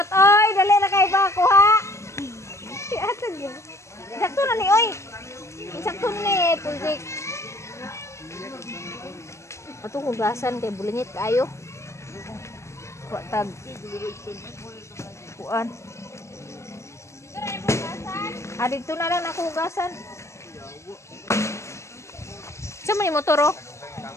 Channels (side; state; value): right; late; 0.14 ms